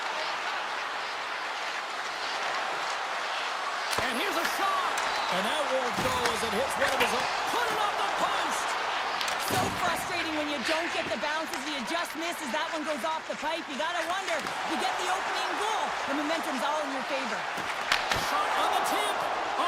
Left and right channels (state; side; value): identical; both; correlation 1.00